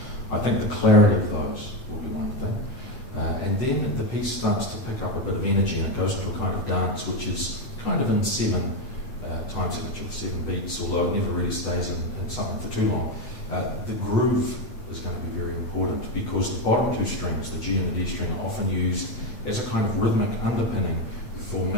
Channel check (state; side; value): late; right; 7.9 ms